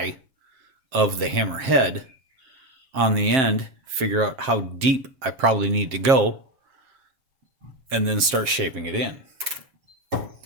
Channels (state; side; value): late; left; 7.5 ms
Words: of the hammer head on the end, figure out how deep I probably need to go, and then start shaping it in.